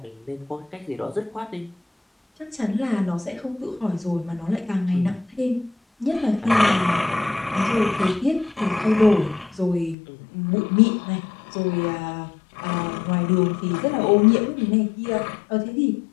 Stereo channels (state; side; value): drops out; right; at 10.0 s